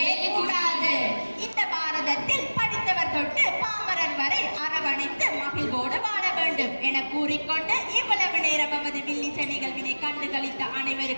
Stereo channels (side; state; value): both; inverted; correlation -1.00